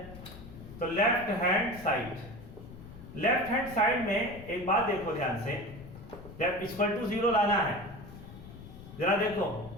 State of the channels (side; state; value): left; noise; rumble, 15 dB below the sound